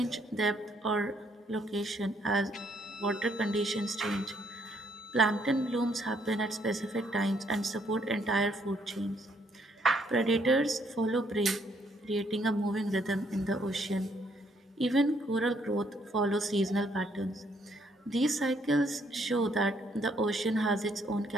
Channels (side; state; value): both; normal; correlation 0.69